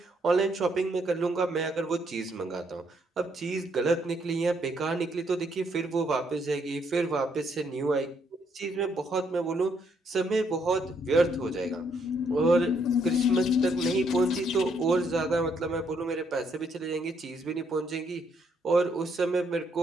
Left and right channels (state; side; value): normal; both; correlation 0.72